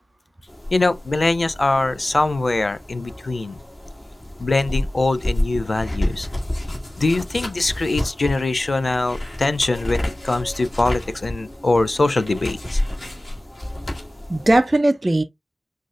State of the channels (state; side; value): normal; both; correlation 0.97